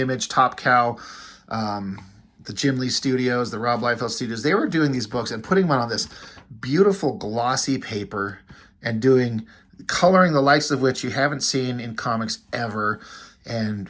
Top Cow, the Jim Lee Studios, the Rob Liefeld Studios, they were doing these books and putting them on this beautiful glossy paper and coloring the likes of which you haven't seen in comics ever, and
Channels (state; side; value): identical; both; correlation 1.00